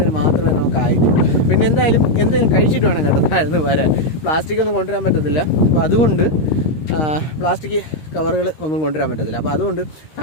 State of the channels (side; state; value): right; late; 13 ms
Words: മാത്രമേ നമുക്ക് ആയിട്ടുള്ളൂ. പിന്നെ എന്തെങ്കിലും കഴിച്ചിട്ട് വേണം കേട്ടോ താഴ്ന്ന് വരാൻ. പ്ലാസ്റ്റിക് ഒന്നും കൊണ്ടുവരാൻ പറ്റത്തില്ല. അപ്പോൾ അതുകൊണ്ട് പ്ലാസ്റ്റിക് കവറുകൾ ഒന്നും കൊണ്ടുവരാൻ പറ്റത്തില്ല. അപ്പോൾ അതുകൊണ്ട്